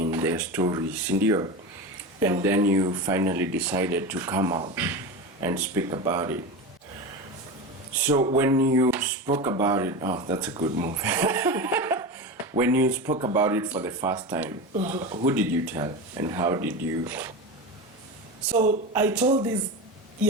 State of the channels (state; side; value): normal; both; correlation 0.24